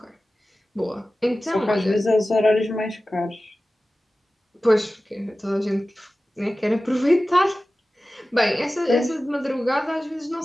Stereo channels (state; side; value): normal; both; correlation 0.96